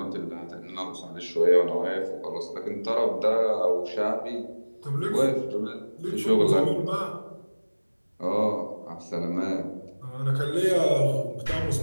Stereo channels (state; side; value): inverted; both; correlation -1.00